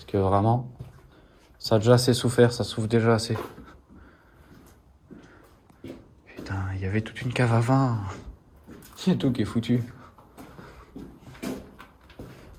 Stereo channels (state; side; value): identical; both; correlation 1.00